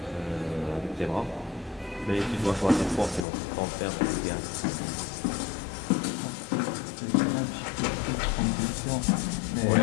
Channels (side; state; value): right; drops out; at 3.2 s